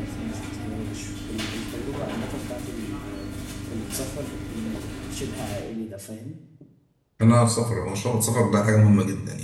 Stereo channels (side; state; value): both; identical; correlation 1.00